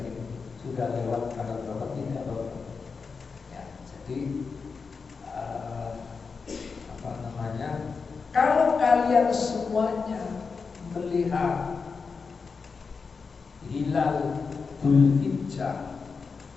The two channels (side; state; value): right; quieter; 5.0 dB